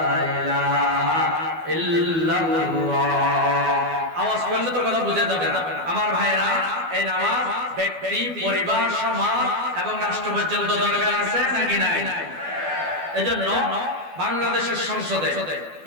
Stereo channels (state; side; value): late; left; 12 ms